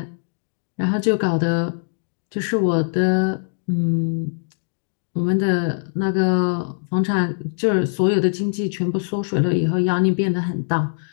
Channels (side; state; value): right; silent; digital silence